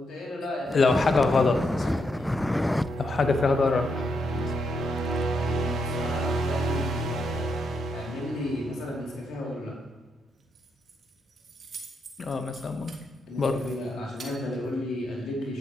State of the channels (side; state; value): both; normal; correlation 0.80